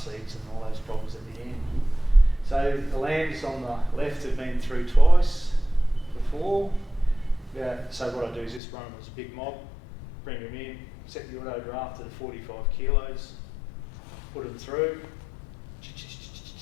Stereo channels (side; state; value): right; drops out; at 8.6 s